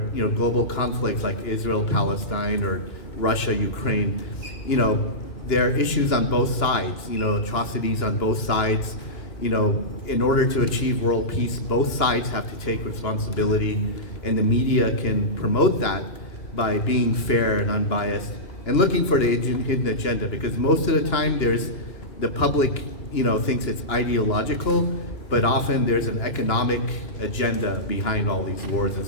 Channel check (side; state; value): right; late; 2.9 ms